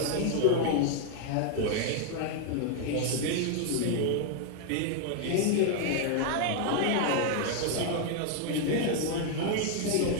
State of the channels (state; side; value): different; both; correlation 0.00